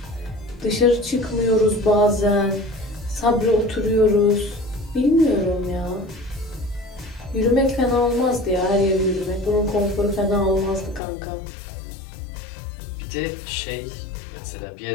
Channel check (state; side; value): drops out; right; at 11.0 s